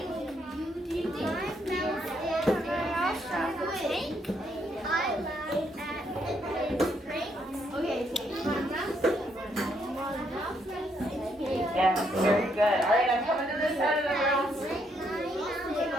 Yes, very good. All right, I'm coming to this side of the room.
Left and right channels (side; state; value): both; normal; correlation 0.74